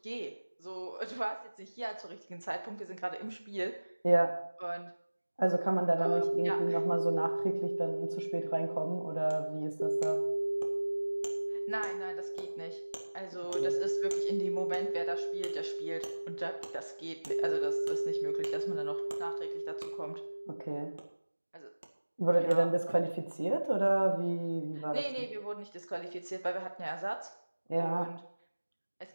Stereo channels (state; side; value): inverted; both; correlation -1.00